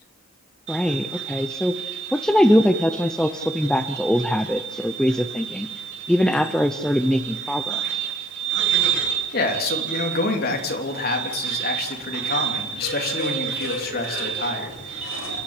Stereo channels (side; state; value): both; normal; correlation 0.65